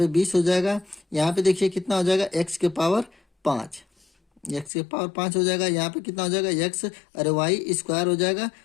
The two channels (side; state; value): right; drops out; at 4.7 s